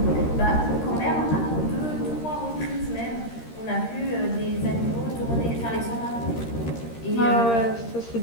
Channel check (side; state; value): right; late; 13 ms